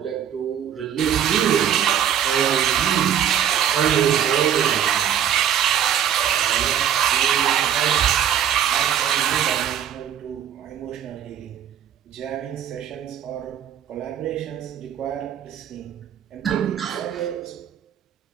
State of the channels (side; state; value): left; quieter; 9.7 dB